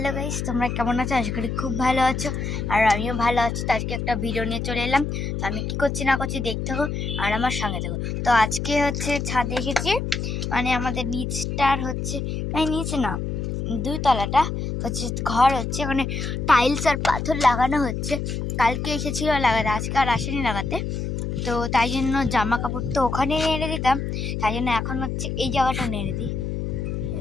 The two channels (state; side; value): noise; left; hum, 3 dB below the sound